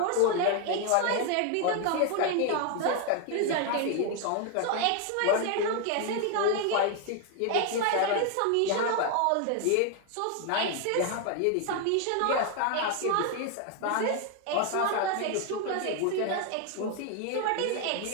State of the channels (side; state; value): both; different; correlation 0.01